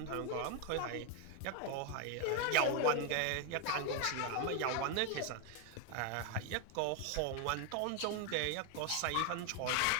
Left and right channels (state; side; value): different; both; correlation 0.01